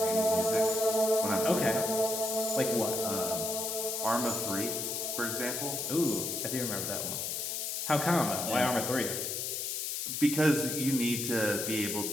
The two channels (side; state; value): left; noise; hiss, 2 dB below the sound